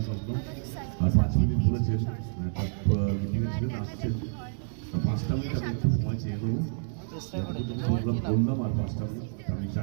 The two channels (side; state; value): left; silent; digital silence